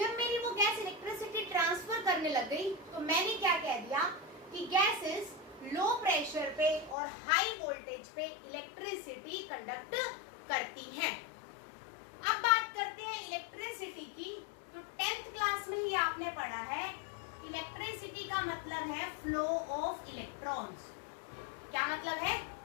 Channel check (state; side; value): drops out; right; at 7.0 s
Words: मेरी वो गैस इलेक्ट्रिसिटी ट्रांसफर करने लग गई तो मैंने क्या कह दिया कि गैसेस लो प्रेशर पे और हाई वोल्टेज पे इलेक्ट्रिसिटी कंडक्ट करती हैं। अब बात करते हैं इलेक्ट्रिसिटी की। तो 10th क्लास में ही आपने पढ़ा है, इलेक्ट्रिसिटी का मतलब है फ्लो ऑफ इलेक्ट्रॉन्स। क्या मतलब है?